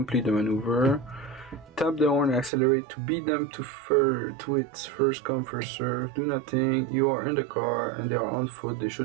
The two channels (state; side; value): drops out; left; at 2.5 s